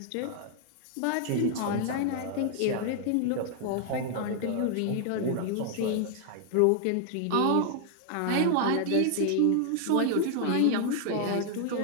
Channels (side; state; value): both; different; correlation 0.00